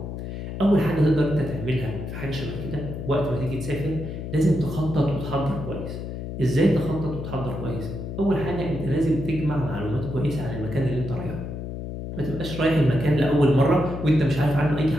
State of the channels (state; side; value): noise; left; hum, 7 dB below the sound